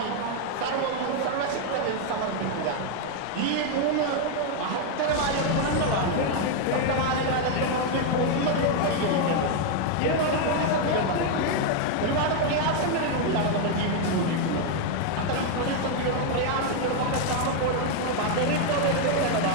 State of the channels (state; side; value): different; both; correlation 0.01